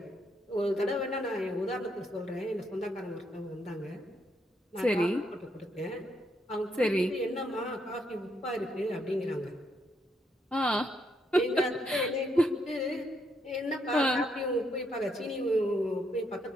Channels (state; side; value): normal; both; correlation 0.76